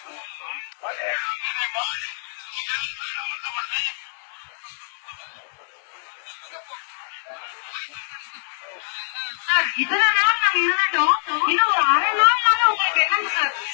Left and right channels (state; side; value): silent; right; digital silence